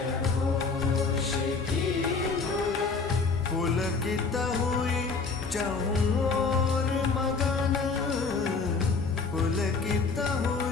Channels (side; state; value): right; quieter; 4.5 dB